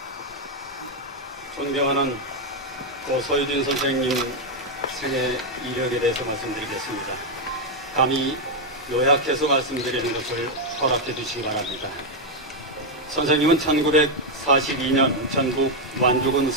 존경하는 고 서유진 선생님 생애 이력에 대해서 말씀드리겠습니다. 감히 요약해서 말씀드리는 것을 허락해 주시기 바랍니다. 선생님은 1942년 전북 완주군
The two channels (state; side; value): normal; both; correlation 0.02